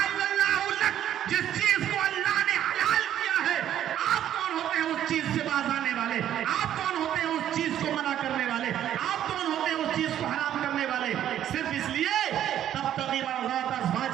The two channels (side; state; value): left; quieter; 11.0 dB